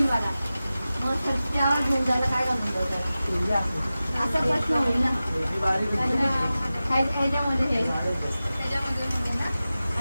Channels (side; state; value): both; inverted; correlation -0.95